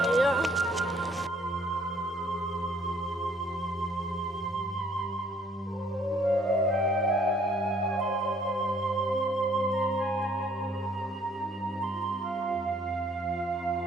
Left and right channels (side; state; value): both; normal; correlation 0.62